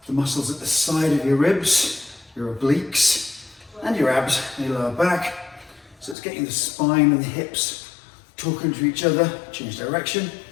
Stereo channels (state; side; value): drops out; right; at 6.2 s